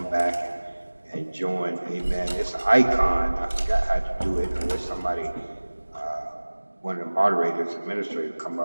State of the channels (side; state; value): both; inverted; correlation -1.00